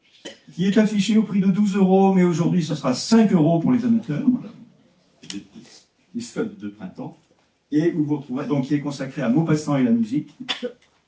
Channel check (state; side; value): identical; both; correlation 1.00